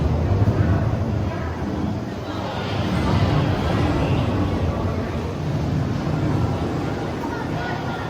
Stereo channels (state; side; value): identical; both; correlation 1.00